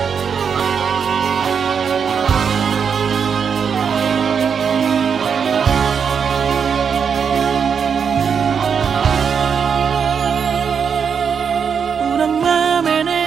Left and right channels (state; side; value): quieter; left; 6.7 dB